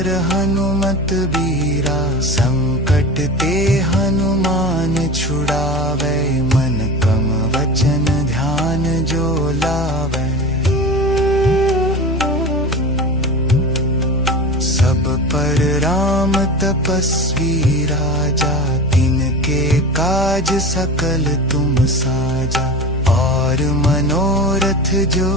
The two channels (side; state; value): both; normal; correlation 0.31